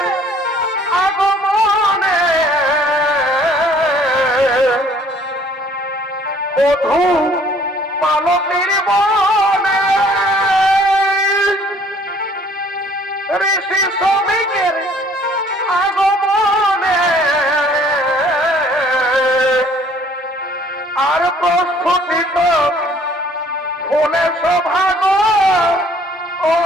আগমনে মধু মালতীর বনে ঋষি শ্রমিকের আগমনে আর প্রস্ফুটিত ফুলে সভাগ ও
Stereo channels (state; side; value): normal; both; correlation 0.57